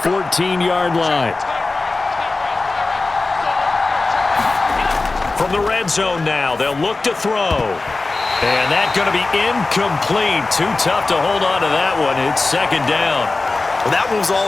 line. From the red zone now, they'll look to throw. And that's going to be incomplete. Too tough to hold on to that one. It's 2nd down. Well, that one was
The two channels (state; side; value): quieter; right; 3.5 dB